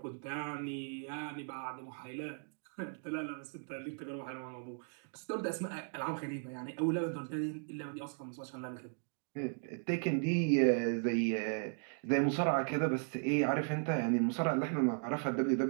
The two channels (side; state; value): left; silent; 53 dB below the other